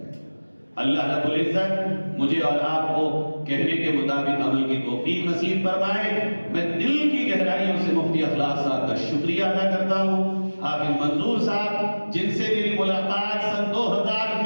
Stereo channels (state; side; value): inverted; both; correlation -1.00